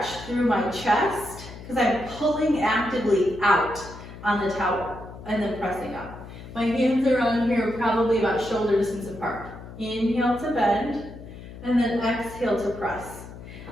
through my chest because I'm pulling actively out on the towel and then pressing up. My hands around here probably about shoulder distance apart. Inhale to bend and then exhale to press.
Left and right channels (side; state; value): left; noise; hum, 14 dB below the sound